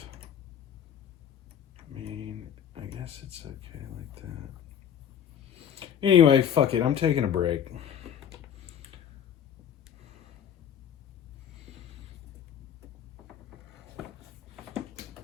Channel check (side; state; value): right; quieter; 8.9 dB